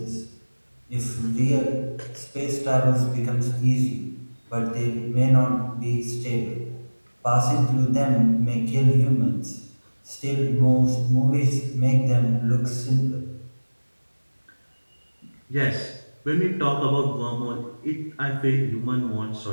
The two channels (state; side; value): inverted; both; correlation -1.00